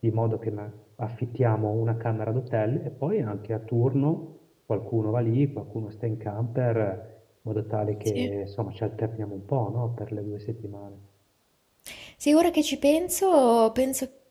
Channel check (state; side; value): identical; both; correlation 1.00